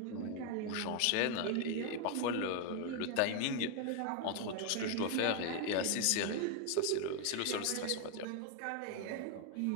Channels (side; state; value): both; different; correlation 0.01